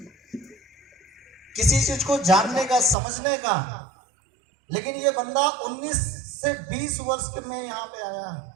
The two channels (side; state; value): left; drops out; at 3.0 s